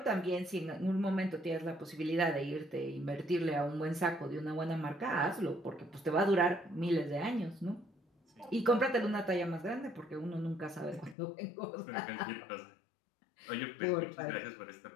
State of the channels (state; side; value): drops out; right; at 11.2 s